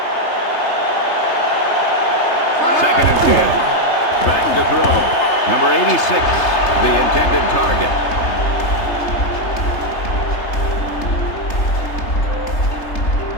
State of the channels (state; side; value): late; right; 3.3 ms